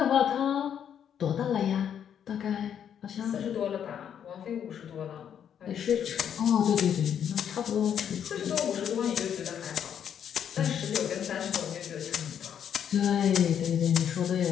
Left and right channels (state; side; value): quieter; right; 8.8 dB